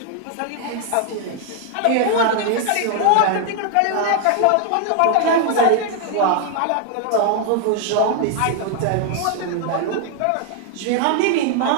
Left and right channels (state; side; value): different; both; correlation 0.00